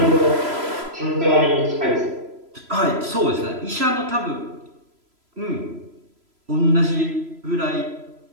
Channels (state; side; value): late; left; 3.0 ms